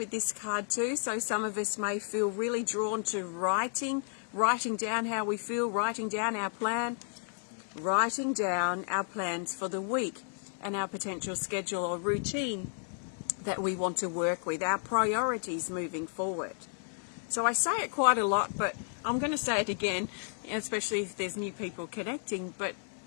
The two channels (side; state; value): right; silent; 56 dB below the other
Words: this card too. So some of us may feel really drawn to writing down how we feel, writing down our plan, writing down our plans for the week. and our potential schedule or routine that we want to work with, our priorities moving forward. So I say it quite a lot, but I'm going to say it again, especially if there's new people connecting, but